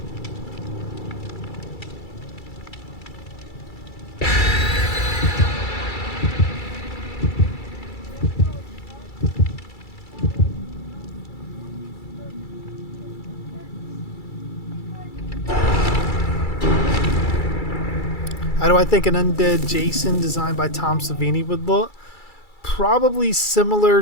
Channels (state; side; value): late; right; 2.3 ms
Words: How do I think an undead Jason designed by Tom Savini would look? Probably similar